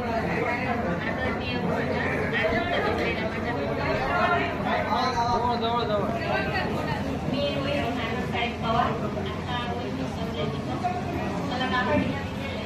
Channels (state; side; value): identical; both; correlation 1.00